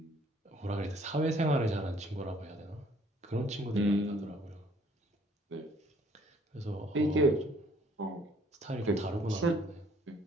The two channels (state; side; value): normal; both; correlation 0.60